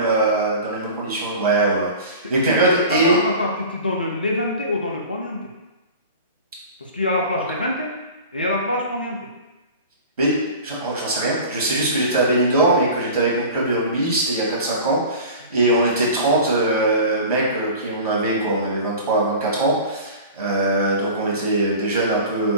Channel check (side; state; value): both; inverted; correlation -0.38